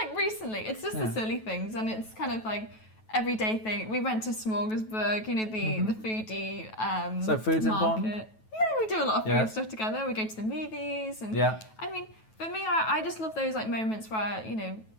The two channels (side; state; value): right; late; 9.2 ms